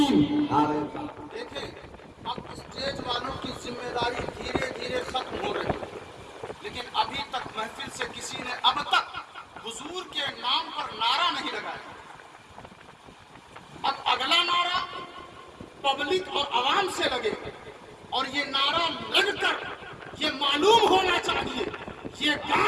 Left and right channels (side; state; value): both; identical; correlation 1.00